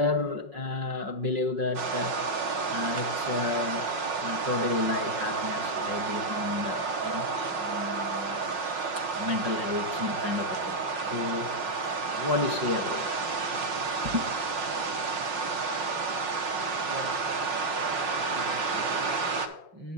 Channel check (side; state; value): left; late; 5.5 ms